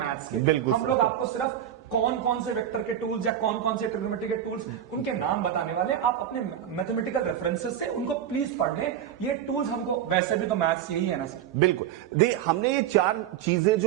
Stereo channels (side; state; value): left; quieter; 10.3 dB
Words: के। हम लोग आपको सिर्फ कौन कौन से वेक्टर के टूल्स या कौन कौन से ट्रिग्नोमेट्री के टूल्स, उनके नाम बताने वाले। आप अपने मैथमेटिकल रेफरेंसेस से उनको प्लीज पढ़ लें। ये टूल्स हमको, वैसे भी तो मैथ्स यही है ना सर। बिल्कुल। हमने ये 4 चीजें